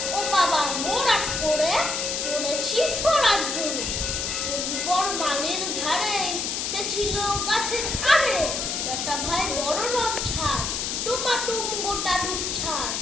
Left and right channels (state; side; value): noise; left; hiss, 1 dB below the sound